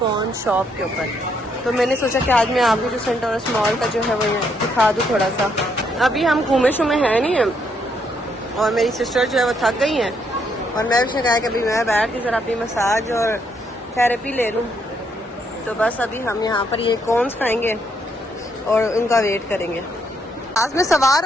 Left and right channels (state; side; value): normal; both; correlation 0.73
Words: शॉप के ऊपर। तो मैंने सोचा कि आज मैं आपको जो सेंटोरस मॉल का जो है वो दिखा दूँ थोड़ा सा। अभी हम घूमे शुमे हैं नहीं हैं और मेरी सिस्टर जो है वो थक गई हैं और मैं भी कहा कि अभी मैं बैठ के ज़रा अपनी मसाज और थेरेपी ले लूँ। तो बस अभी हम यहाँ पर ये कॉर्न्स खाएंगे और उनका वेट करेंगे। जहाज में सवार